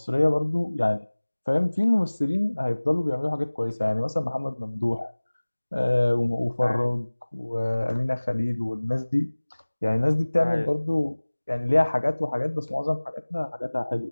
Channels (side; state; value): both; inverted; correlation -1.00